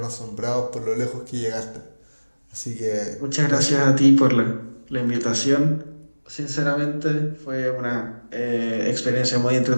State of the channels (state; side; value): inverted; both; correlation -1.00